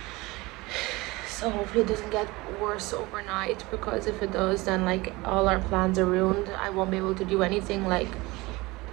So hopefully it doesn't get worse overnight, because if it does, then like all our plans are ruined. I won't be able to do anything. Like,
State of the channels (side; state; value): left; quieter; 22.1 dB